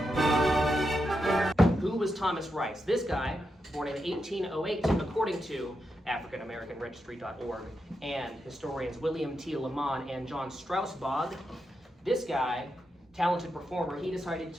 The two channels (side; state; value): both; normal; correlation 0.86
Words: Who was Thomas Rice? This guy, born in 1808, according to AfricanAmericanRegistry.org and historians William T. Lamont and John Strausbog. This guy, talented performer, he decided